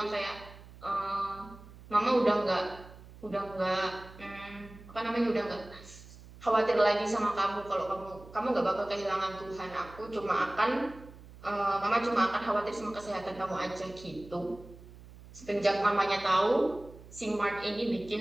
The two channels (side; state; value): right; noise; hum, 19 dB below the sound